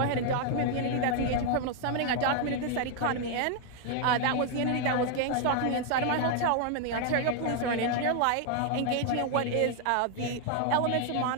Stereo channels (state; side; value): different; both; correlation 0.00